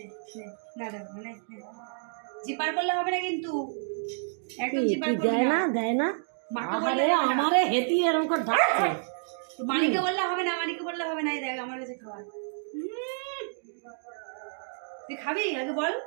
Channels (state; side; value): silent; left; digital silence